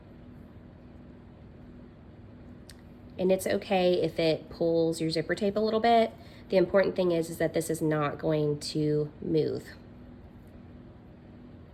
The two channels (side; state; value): both; identical; correlation 1.00